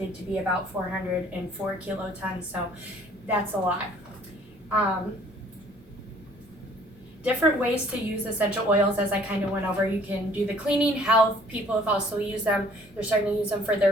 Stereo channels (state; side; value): normal; both; correlation 0.56